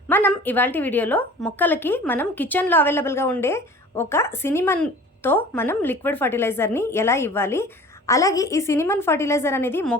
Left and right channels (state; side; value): normal; both; correlation 0.44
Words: మనం ఇవాల్టి వీడియోలో మొక్కలకి మనం కిచెన్లో అవైలబుల్గా ఉండే ఒక సినిమన్తో మనం లిక్విడ్ ఫర్టిలైజర్ని ఎలా ఇవ్వాలి, అలాగే ఈ సినిమన్ ఫర్టిలైజర్ అనేది